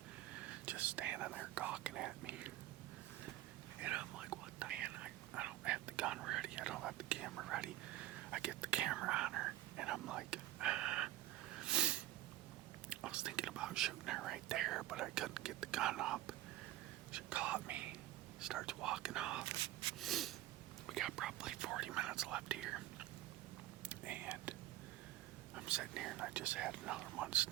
just standing there gawking at me. And I'm like, what the man? I don't have the gun ready. I don't have the camera ready. I get the camera on her, and I'm like, I was thinking about shooting her right there, but I couldn't get the gun up. She caught me, starts walking off. We got probably 40 minutes left here. And I'm sitting here and I just had another one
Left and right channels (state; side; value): quieter; left; 15.1 dB